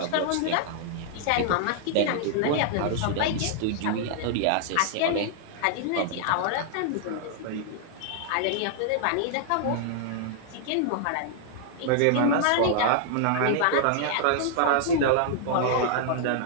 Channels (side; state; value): both; different; correlation -0.01